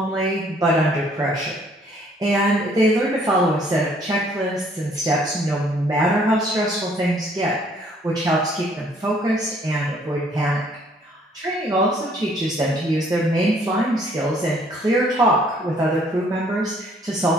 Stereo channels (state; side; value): normal; both; correlation 0.62